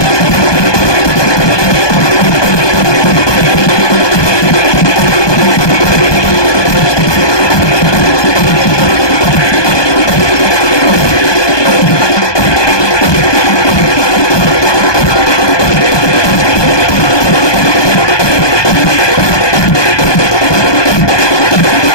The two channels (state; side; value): late; right; 1.2 ms